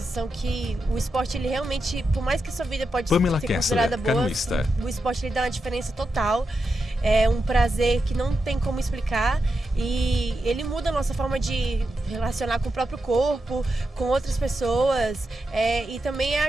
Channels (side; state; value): both; normal; correlation 0.88